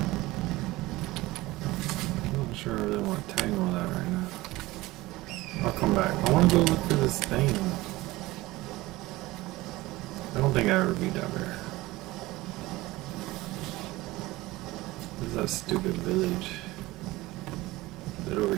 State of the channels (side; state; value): left; quieter; 19.2 dB